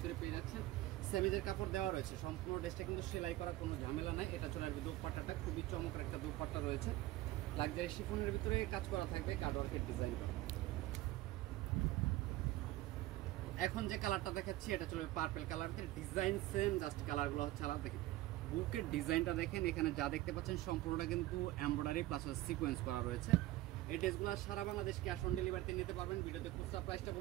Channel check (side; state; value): left; quieter; 16.9 dB